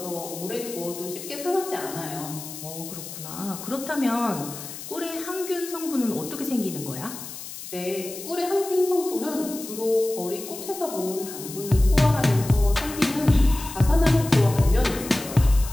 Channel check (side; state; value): left; noise; hiss, 11 dB below the sound